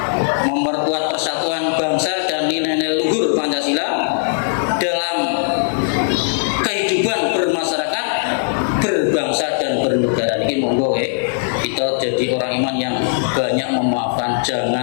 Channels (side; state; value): right; silent; 64 dB below the other